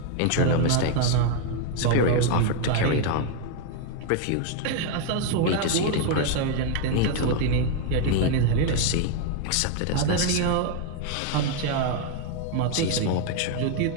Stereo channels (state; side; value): different; both; correlation 0.00